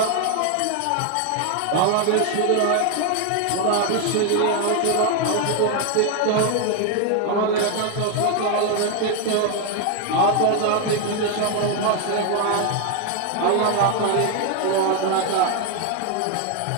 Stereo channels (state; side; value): different; both; correlation 0.01